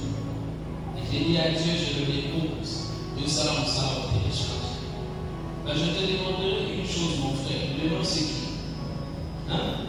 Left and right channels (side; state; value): both; identical; correlation 1.00